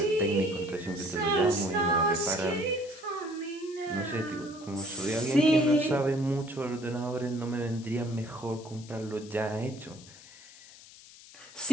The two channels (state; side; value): noise; left; hiss, 20 dB below the sound